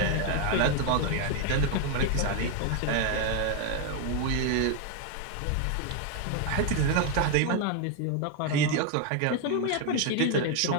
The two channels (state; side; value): different; both; correlation 0.01